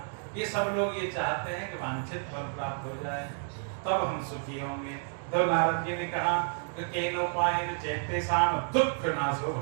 कि सब लोग ये चाहते हैं कि वांछित फल प्राप्त हो जाए, तब हम सुखी होंगे। तो नारद जी ने कहा कि केनोपायेन चेतेषां दुःख नाशो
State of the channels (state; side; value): silent; left; 57 dB below the other